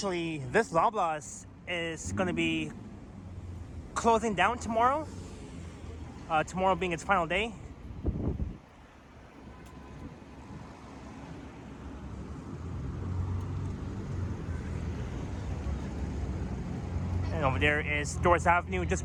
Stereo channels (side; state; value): both; identical; correlation 1.00